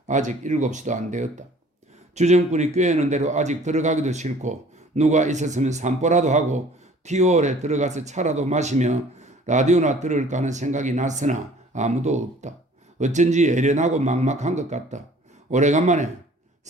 아직 7시도 안 되었다. 주정꾼이 꾀는 대로 아직 들어가기도 싫고 누가 있었으면 산보라도 하고 티오올에 들어가서 차라도 마시며 라디오나 들을까 하는 생각이 났으나 아무도 없다. 어쩐지 애련하고 막막한 것 같다. 오래간만에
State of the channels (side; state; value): both; normal; correlation 0.52